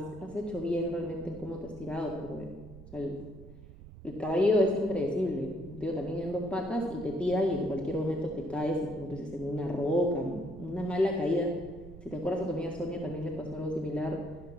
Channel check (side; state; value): right; noise; rumble, 17 dB below the sound